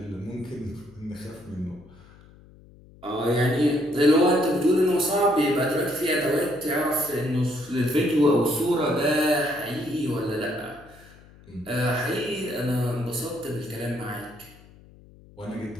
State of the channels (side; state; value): left; noise; hum, 24 dB below the sound